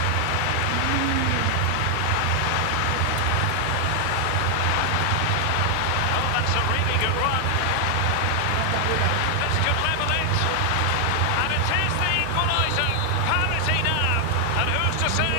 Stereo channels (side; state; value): both; different; correlation 0.00